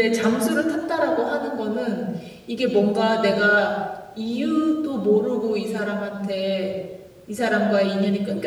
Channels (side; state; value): both; identical; correlation 1.00